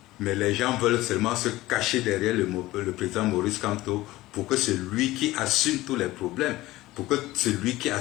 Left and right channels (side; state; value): right; quieter; 17.7 dB